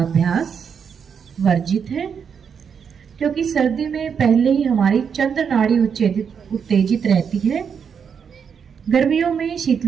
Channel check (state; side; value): quieter; left; 6.9 dB